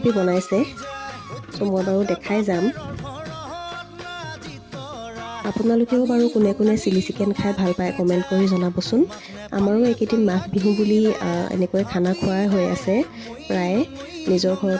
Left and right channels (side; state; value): both; identical; correlation 1.00